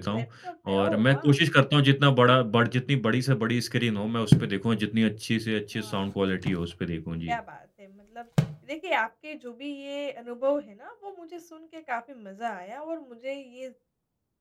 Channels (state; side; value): identical; both; correlation 1.00